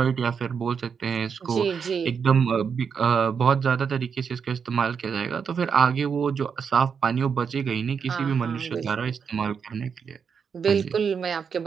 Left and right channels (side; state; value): left; quieter; 6.5 dB